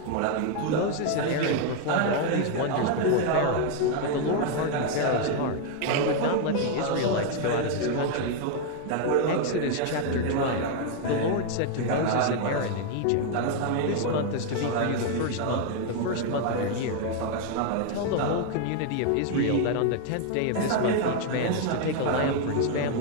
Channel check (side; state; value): both; different; correlation 0.00